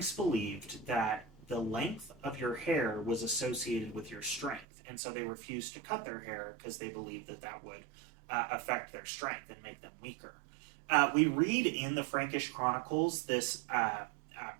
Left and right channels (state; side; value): drops out; left; at 4.7 s